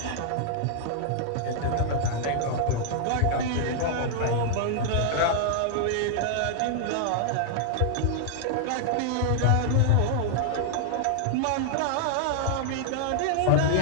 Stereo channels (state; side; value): different; both; correlation -0.01